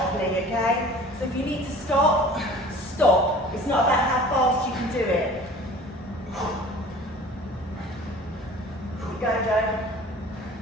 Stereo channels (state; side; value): normal; both; correlation 0.45